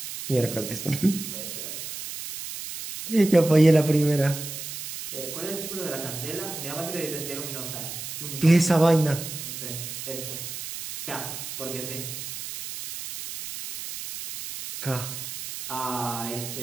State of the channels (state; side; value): noise; right; hiss, 8 dB below the sound